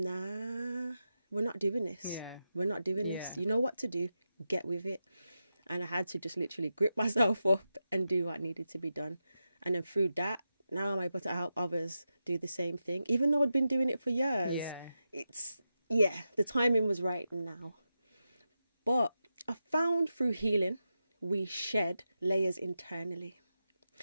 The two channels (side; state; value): both; inverted; correlation -0.89